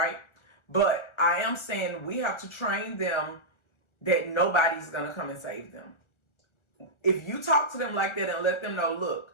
But I am saying we have to train them that nobody's going to come and save them. If you talk to them like that and let them know,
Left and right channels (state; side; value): late; right; 1.4 ms